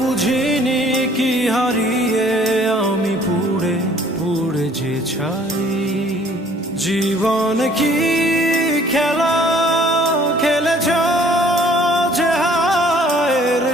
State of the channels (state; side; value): normal; both; correlation 0.57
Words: কি হারিয়ে আমি পুড়ে পুড়ে যে ছাই? জীবন কি খেলা খেলেছ যে হায়ের